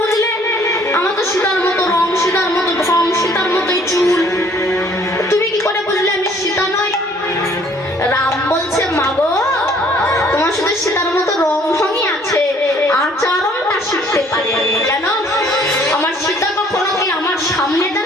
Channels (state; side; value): normal; both; correlation 0.59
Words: আমার তো সীতার মতো রং, সীতার মতো ঢং, সীতার মতোই চুল, তুমি কি করে বুঝলে আমি সীতা নই? রাম বলছে মাগো তোমার সাথে সীতার মতো রং ঢংই আছে, আচরণটা শিখতে পারে। কেন? আমার সীতা কখনো কি আমার সামনে